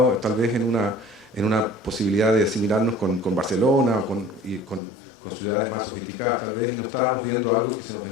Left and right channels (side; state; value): right; drops out; at 4.8 s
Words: tal vez en una posibilidad de asimilarnos con Barcelona o con ciudades más sofisticadas tal vez, y no estábamos viendo algo que se nos